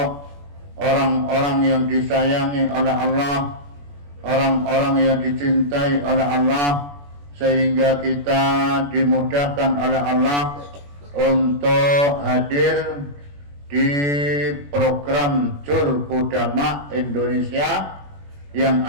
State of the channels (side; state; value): left; late; 21 ms